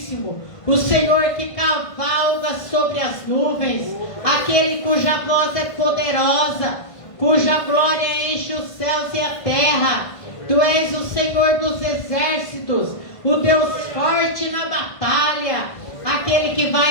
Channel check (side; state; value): right; late; 1.5 ms